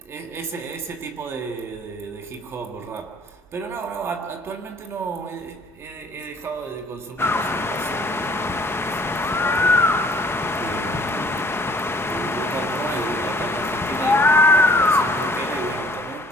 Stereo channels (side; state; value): both; normal; correlation 0.55